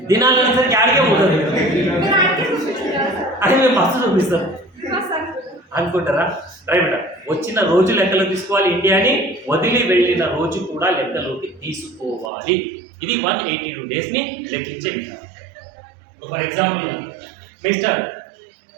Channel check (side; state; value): left; drops out; at 12.3 s